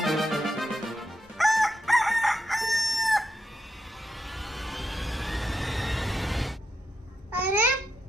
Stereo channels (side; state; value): both; normal; correlation 0.85